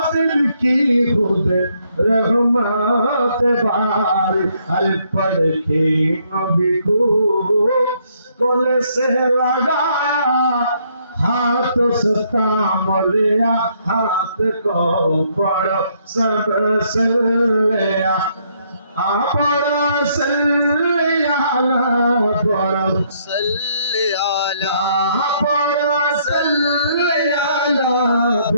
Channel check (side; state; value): both; inverted; correlation -0.70